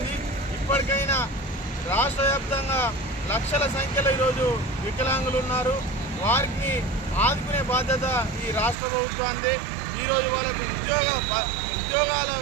ఇప్పటికైనా రాష్ట్ర వ్యాప్తంగా లక్షల సంఖ్యలో ఈరోజు వికలాంగులు ఉన్నారు. వారికి ఆదుకునే బాధ్యత ఈ రాష్ట్ర ప్రభుత్వానికి. ఈరోజు వాళ్ళకు ఉద్యోగాలు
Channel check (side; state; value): left; drops out; at 8.8 s